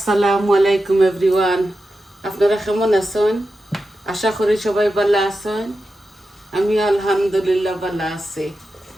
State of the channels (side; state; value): both; normal; correlation 0.91